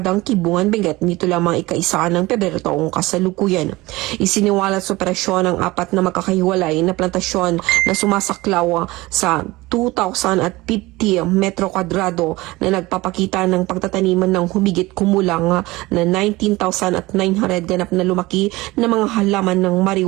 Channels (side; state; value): left; quieter; 20.4 dB